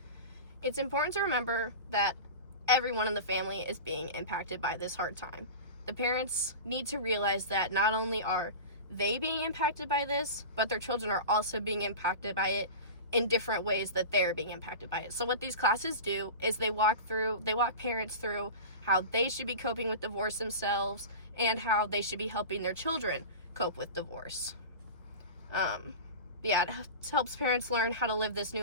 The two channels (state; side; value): inverted; both; correlation -0.30